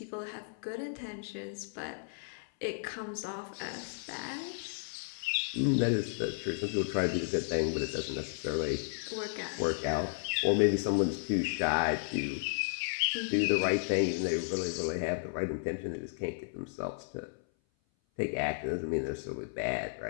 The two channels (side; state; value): right; silent; 55 dB below the other